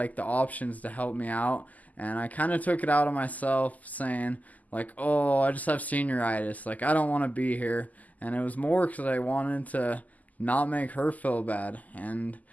the options to help me out, and I kind of took it out on myself, saying like, "Oh, I just have senioritis. Like I don't want to be here," and it was more because I wanted to not make her feel bad, and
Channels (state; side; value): late; right; 0.078 ms